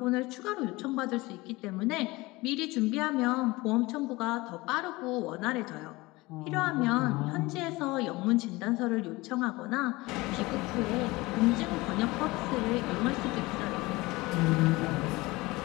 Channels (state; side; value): quieter; right; 21.6 dB